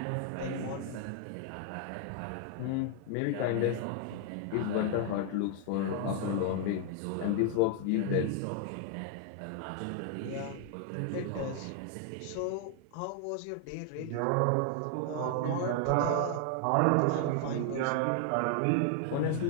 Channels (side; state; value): both; different; correlation 0.00